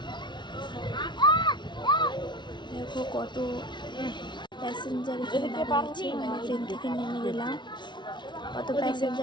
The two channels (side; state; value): right; late; 0.22 ms